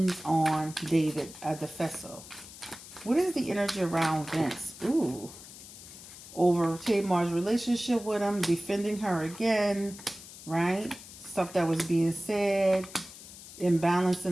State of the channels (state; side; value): noise; left; hiss, 16 dB below the sound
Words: on David Adefeso? What is the energy around Vince? Over Tamar's relationship with him, defending her again, right? Stuff that was being said, imbalance